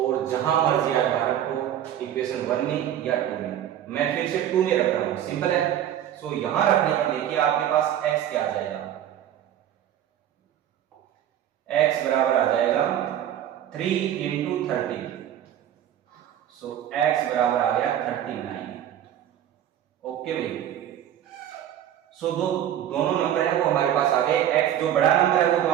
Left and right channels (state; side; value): quieter; left; 10.9 dB